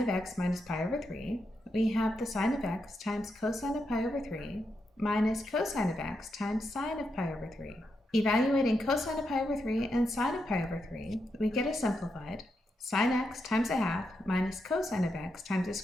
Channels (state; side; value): normal; both; correlation 0.84